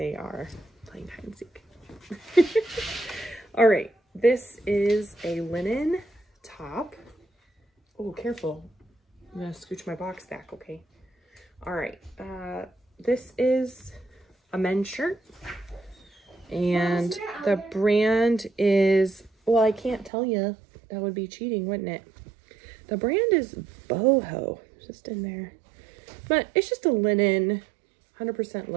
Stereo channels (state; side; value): drops out; left; at 20.1 s